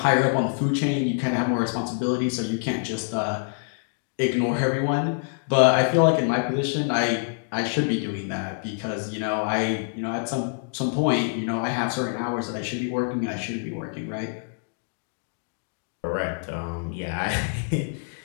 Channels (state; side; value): silent; right; digital silence